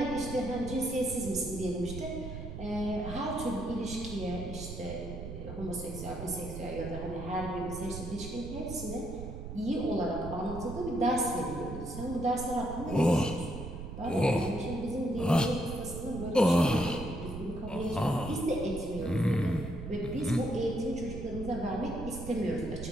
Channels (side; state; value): right; noise; rumble, 8 dB below the sound